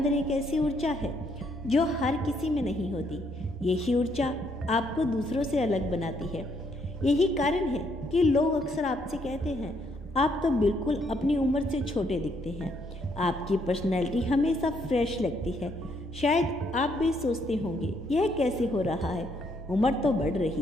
एक ऐसी ऊर्जा है जो हर किसी में नहीं होती। यही ऊर्जा आपको दूसरों से अलग बनाती है। यही कारण है कि लोग अक्सर आपसे कहते हैं आप तो बिल्कुल अपनी उम्र से छोटे दिखते हैं। आपकी पर्सनैलिटी हमेशा फ्रेश लगती है। शायद आप भी सोचते होंगे यह कैसे हो रहा है, उम्र तो बढ़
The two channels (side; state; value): both; normal; correlation 0.72